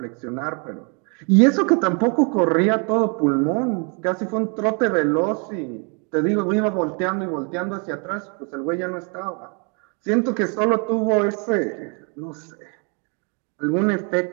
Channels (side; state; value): left; quieter; 36.5 dB